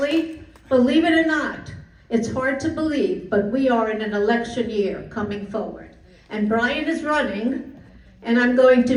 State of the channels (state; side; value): identical; both; correlation 1.00